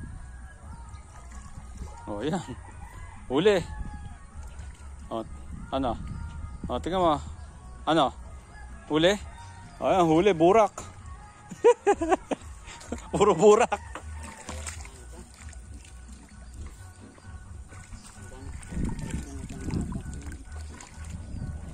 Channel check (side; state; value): both; identical; correlation 1.00